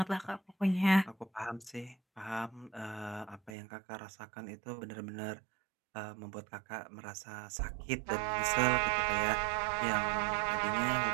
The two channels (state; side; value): drops out; left; at 3.6 s